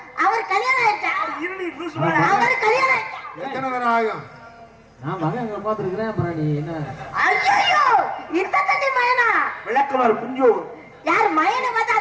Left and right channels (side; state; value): both; identical; correlation 1.00